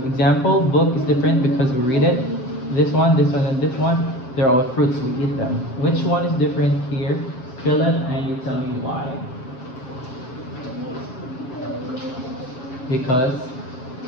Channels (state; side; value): late; right; 7.7 ms